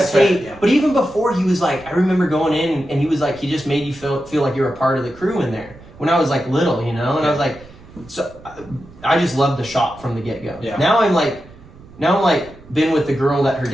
Skate, right, yeah. but even before he was like, I remember going in and he was like, he just made you feel like you were a part of the crew in there. When I was like little, you know, and I was like, so I just loved the shop from the get go. Yeah. Now I'm like been with the girl that her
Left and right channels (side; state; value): right; noise; rumble, 22 dB below the sound